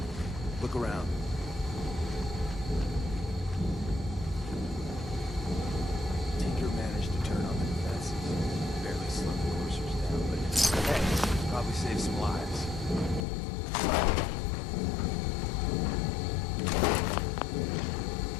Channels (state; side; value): drops out; right; at 13.2 s